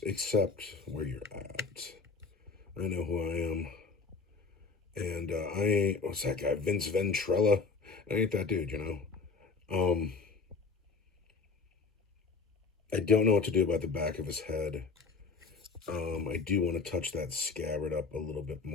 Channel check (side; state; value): right; quieter; 4.6 dB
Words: accept where you're at. I know who I am, and I ain't. What's that guy? Vince Ventrella. I ain't that dude. I don't know what to do about the back of his head. I do want to touch that scabbard up a little bit